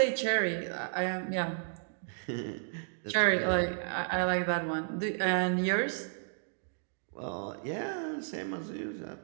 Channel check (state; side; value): silent; left; digital silence